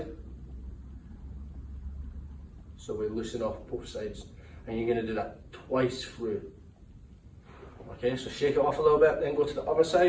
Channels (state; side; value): identical; both; correlation 1.00